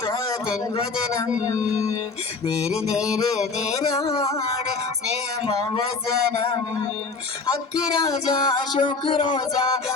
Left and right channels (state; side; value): quieter; right; 4.3 dB